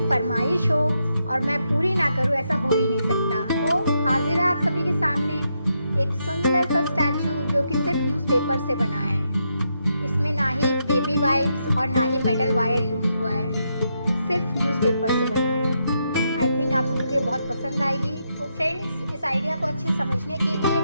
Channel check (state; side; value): inverted; both; correlation -0.81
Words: फरमाइश हो और मैं पूरी ना करूँ, ऐसा हो ही नहीं सकता। तो हाजिर है आप सभी के सामने एक सुंदर सा स्टैचू जो कि सिर्फ न्यूज़पेपर से बना है। इसमें ना ही बेबी वाइप्स और ना ही मेटल वायर यूज़ हुआ है, सिर्फ न्यूज़पेपर से बना है। आई थिंक आप सभी को बहुत पसंद आएगी। तो फ्रेंड्स, इस आइडिया को अच्छे समझने के लिए